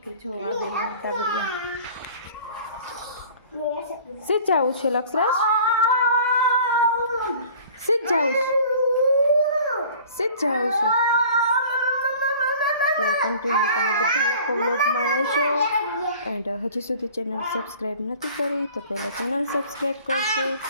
જો આવી સીધ જવું છે લક્ષરાજ, સીધ જવું છે, સીધ જવું છે. તો કન્ટિન્યુ તમે બધા લોકો વ્લોગમાં રહેજો. એન્ડ હજી સુધી ચેનલ સબસ્ક્રાઈબ નથી કરી તો પહેલાં ચેનલ સબસ્ક્રાઈબ કરજો.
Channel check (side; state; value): both; inverted; correlation -0.47